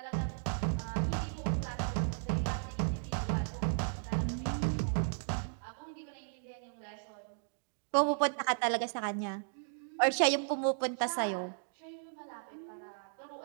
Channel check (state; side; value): silent; left; digital silence